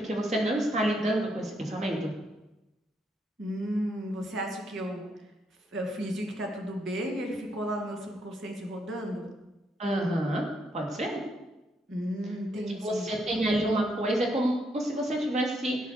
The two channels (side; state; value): both; normal; correlation 0.76